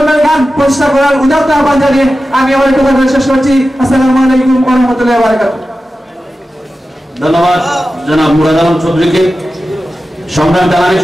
গান প্রতিষ্ঠা করার উদাত্ত আহ্বান জানিয়ে আমি আমার কথা শেষ করছি। আসসালামু আলাইকুম ওয়া রাহমাতুল্লাহি ওয়া বারাকাতুহু। ধন্যবাদ জনাব মুরাদ আলম চৌধুরীকে। সংগ্রাম জানানিস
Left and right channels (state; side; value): normal; both; correlation 0.93